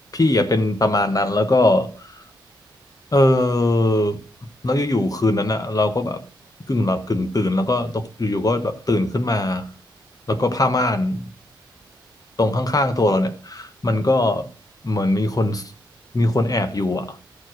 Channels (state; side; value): normal; both; correlation 0.78